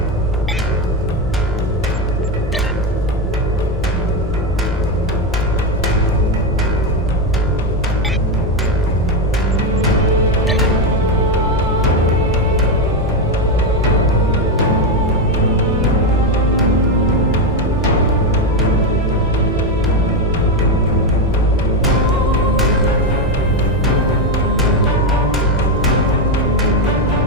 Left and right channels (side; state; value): both; normal; correlation 0.09